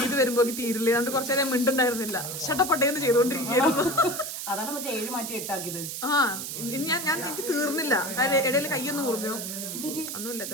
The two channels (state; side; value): noise; right; hiss, 6 dB below the sound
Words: ഇത് വരുമ്പോ തീരില്ല, അതുകൊണ്ട് കുറച്ചു നേരം മിണ്ടുണ്ടായിരുന്നില്ല. ഷട്ടപ്പട്ടേന്ന് ചെയ്തോണ്ടിരിക്കുകയായിരുന്നു. അതാണ് മറ്റേ 7 മാറ്റി 8 ആക്കിയത്. ഞാൻ എനിക്ക് തീർന്നില്ല. ഇടയിൽ കൈയൊന്നും മുറിഞ്ഞു ഒന്നുമില്ല,